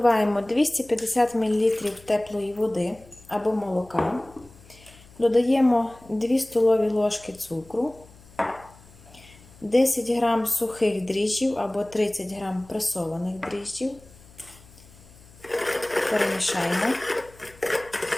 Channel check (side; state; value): left; noise; hum, 24 dB below the sound